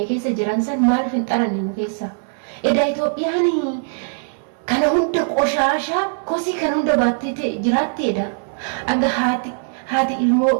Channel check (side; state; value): left; silent; digital silence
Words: keessa jiran san maaliif hin xaranne nu keessa? Edaa Itoophiyaan kana hunda qoshaashaa kosii kan hunda baattee jiraatti edha. Aga haati ilmoo